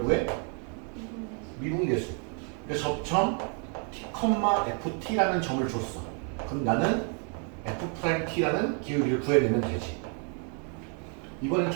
구해? 미분계수. 그러니까 접점 t, ft라는 점을 줬어. 그럼 나는 f't라는 기울기를 구해내면 되지. 이번엔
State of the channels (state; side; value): quieter; left; 39.9 dB